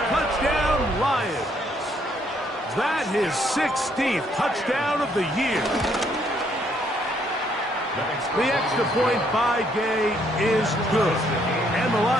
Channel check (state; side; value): normal; both; correlation 0.69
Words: Touchdown, Lions. That his 16th touchdown of the year. The extra point by Gay is good. And the